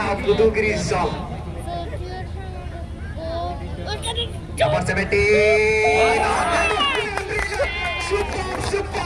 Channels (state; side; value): identical; both; correlation 1.00